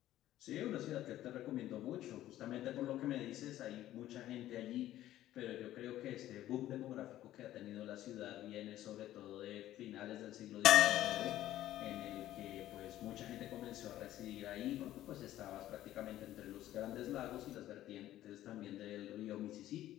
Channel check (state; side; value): quieter; right; 13.7 dB